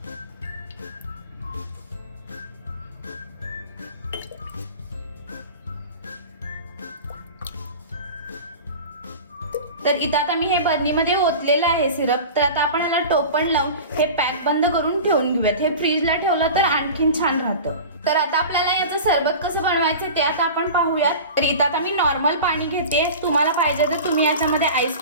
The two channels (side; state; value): both; inverted; correlation -0.34